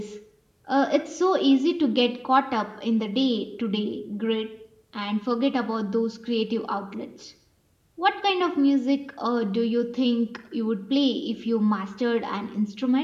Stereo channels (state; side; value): identical; both; correlation 1.00